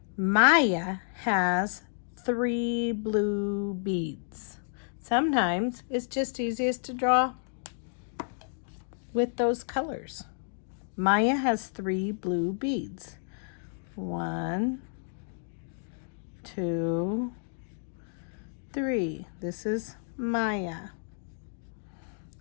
Maya has 3 blue beads. Sometimes it's just easiest to draw with those colors. Maya has 3 blue beads. 1, 2, 3. This is Maya.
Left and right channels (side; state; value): right; silent; digital silence